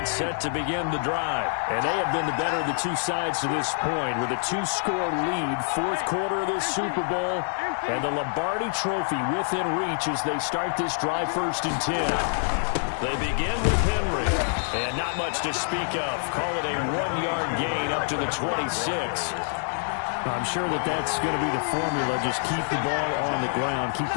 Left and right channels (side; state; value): right; silent; digital silence